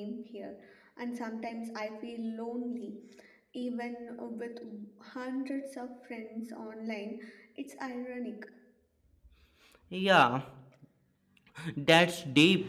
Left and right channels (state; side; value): identical; both; correlation 1.00